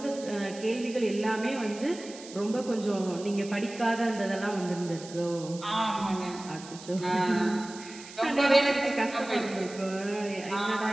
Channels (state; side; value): noise; right; hiss, 16 dB below the sound